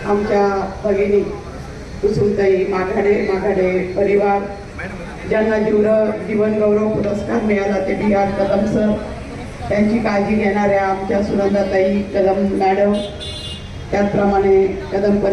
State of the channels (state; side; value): identical; both; correlation 1.00